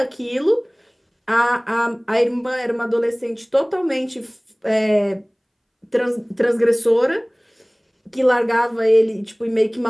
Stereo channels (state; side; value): identical; both; correlation 1.00